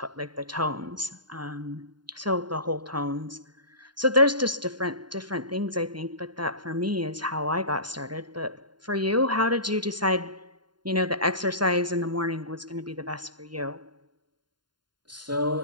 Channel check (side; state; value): left; late; 0.71 ms